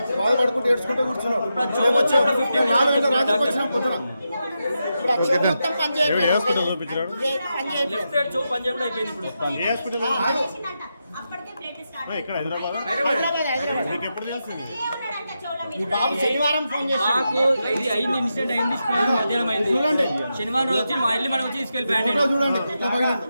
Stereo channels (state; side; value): inverted; both; correlation -0.87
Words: బాధపడుకుంటూ ఏడ్చుకుంటూ కూర్చున్నాం. వచ్చినాం పొద్దున. ఇక్కడ హైదరాబాద్ ఎప్పుడు తెలిసింది? బాబు శనివారం ఫోన్ చేసి మాకు ఇది అయింది, ఇన్సిడెంట్ అయింది, మధ్యాహ్నం అయింది. చూడండి, శనివారం వచ్చి మా ఇల్లు మనం వచ్చి తీసుకెళ్ళిపోయాడు. చూడండి.